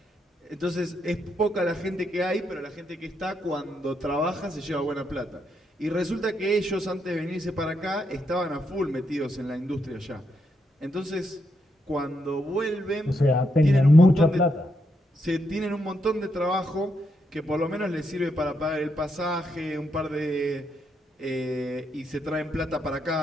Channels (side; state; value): both; normal; correlation 0.79